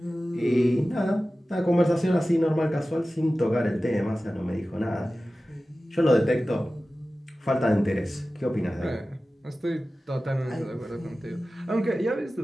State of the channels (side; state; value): both; normal; correlation 0.96